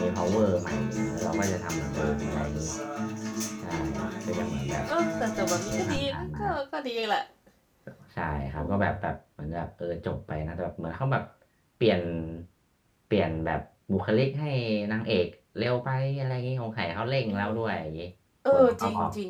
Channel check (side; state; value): both; identical; correlation 1.00